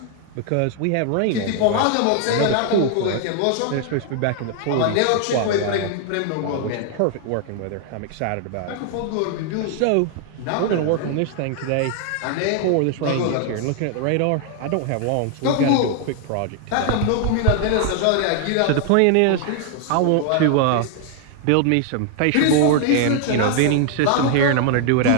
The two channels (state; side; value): different; both; correlation 0.00